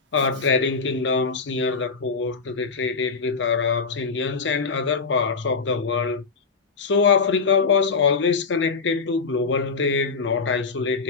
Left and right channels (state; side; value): quieter; right; 4.8 dB